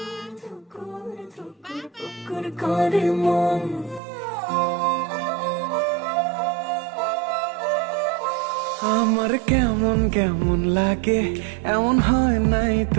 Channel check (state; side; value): drops out; left; at 4.0 s